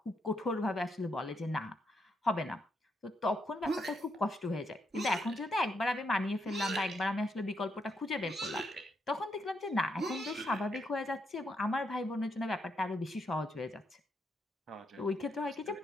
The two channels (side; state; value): both; normal; correlation 0.79